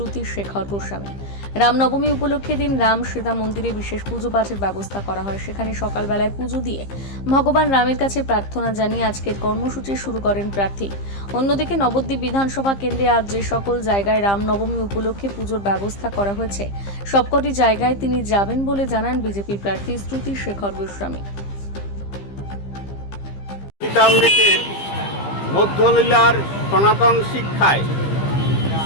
শেখর গোস্বামী। রামনবমী উপলক্ষে দিন রাম সীতা মন্দিরে বিশেষ পুজো পাঠের ব্যবস্থা করা হয়। সেখানে সকালবেলায় পুজো দিয়ে ভগবান রামের কাছে প্রার্থনা জানিয়ে আজকের কর্মসূচি শুরু করেন প্রার্থী। অন্যদিকে নবদ্বীপ বিধানসভা কেন্দ্রে আজ যে সকল জায়গায় রামনবমী উপলক্ষে পুজোর ব্যবস্থা করা হয়েছে সবকটি জায়গায় তিনি যাবেন বলে জানান বিজেপি প্রার্থী শ্রুতি শেখর গোস্বামী। গীতামৃতের মধ্যলীলার সনাতন শিক্ষায়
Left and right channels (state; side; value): late; right; 15 ms